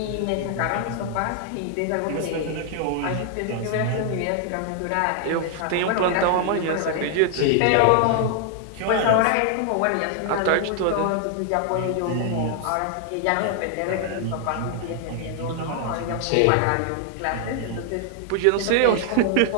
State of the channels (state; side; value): different; both; correlation 0.00